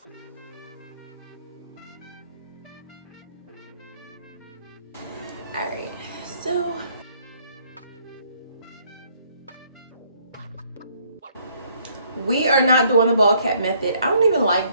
all right, so we are not doing the ball cap method. I don't even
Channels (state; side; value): inverted; both; correlation -0.66